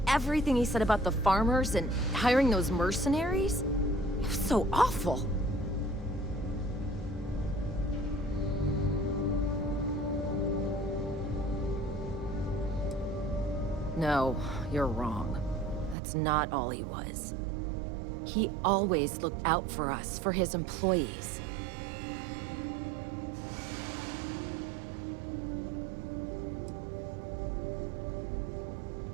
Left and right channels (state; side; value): drops out; left; at 16.0 s